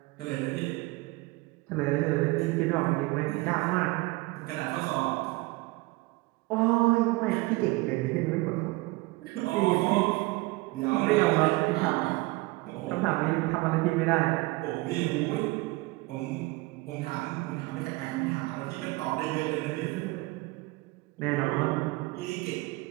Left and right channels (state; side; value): quieter; left; 22.6 dB